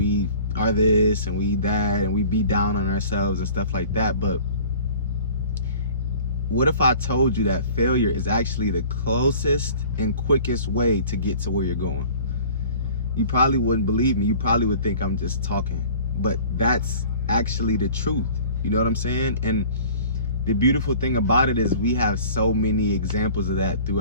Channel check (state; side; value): inverted; both; correlation -0.46